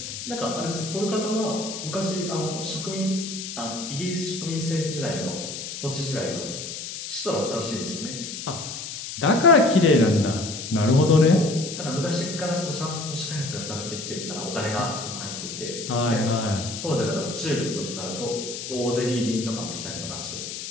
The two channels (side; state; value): left; noise; hiss, 8 dB below the sound